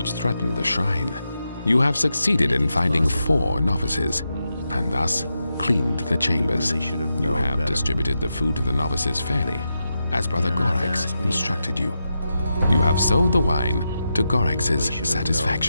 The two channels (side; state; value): both; inverted; correlation -0.87